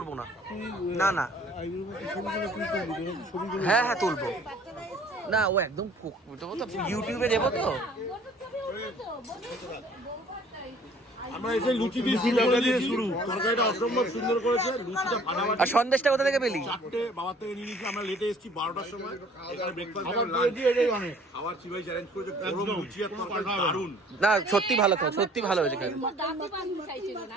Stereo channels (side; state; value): both; normal; correlation 0.55